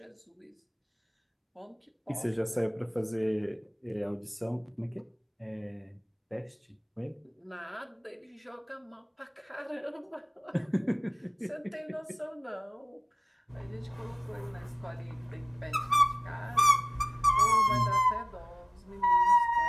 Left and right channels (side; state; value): both; identical; correlation 1.00